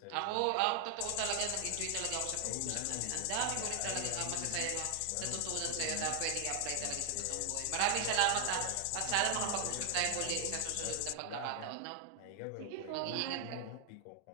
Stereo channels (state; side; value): different; both; correlation 0.00